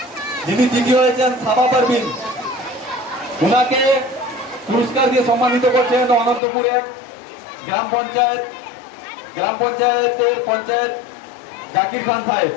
যিনি তৃতীয় হয়েছেন সাবা পারভিন, ওনাকে পুরস্কার দিয়ে সম্মানিত করছেন অনন্তপুর এক গ্রাম পঞ্চায়েতের পঞ্চায়েত জাকির খান সাহেব।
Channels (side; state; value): right; drops out; at 6.4 s